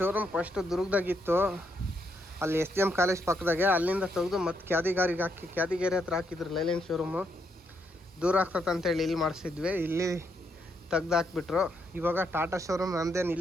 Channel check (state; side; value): normal; both; correlation 0.77